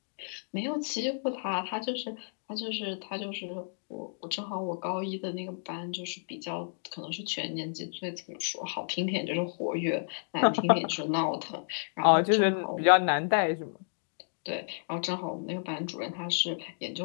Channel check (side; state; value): right; silent; digital silence